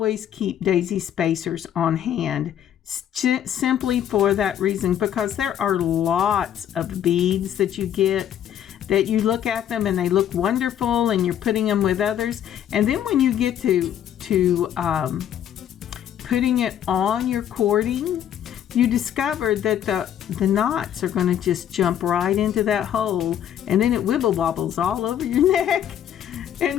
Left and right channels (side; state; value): right; quieter; 10.2 dB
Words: keep daisy spacers on hand, simply for that reason, because there are lots of beads that you get that you look at them and they look wonderful and you're putting them with others, and then when you get to putting it on your cording, you discover that the knots are going to just jump right into that hole, and then it wibble wobbles all over your neck.